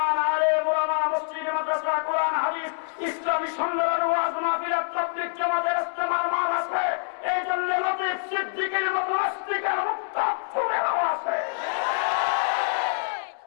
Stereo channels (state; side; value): silent; right; digital silence